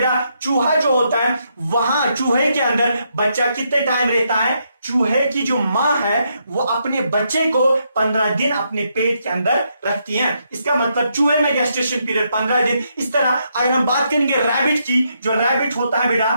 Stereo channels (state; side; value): inverted; both; correlation -0.78